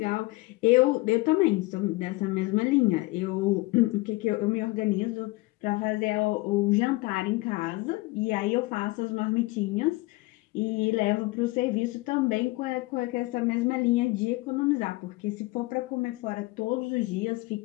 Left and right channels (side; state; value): right; quieter; 21.9 dB